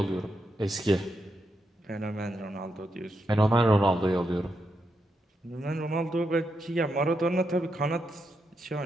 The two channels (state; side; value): normal; both; correlation 0.83